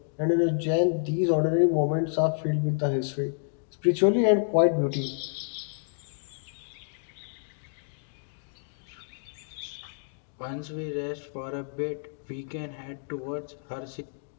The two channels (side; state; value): right; silent; digital silence